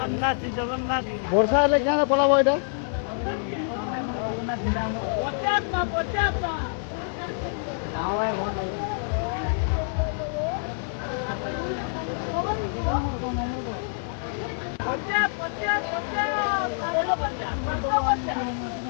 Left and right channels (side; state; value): right; silent; digital silence